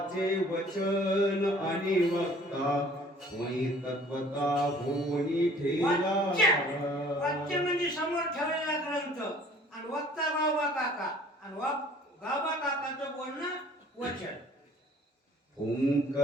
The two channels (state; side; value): normal; both; correlation 0.53